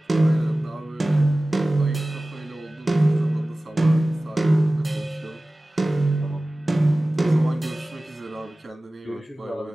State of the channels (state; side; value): normal; both; correlation 0.97